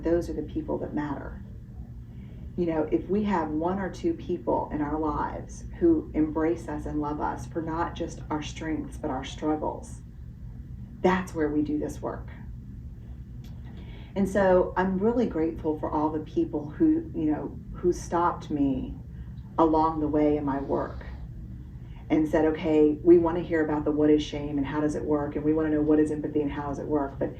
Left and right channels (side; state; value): both; identical; correlation 1.00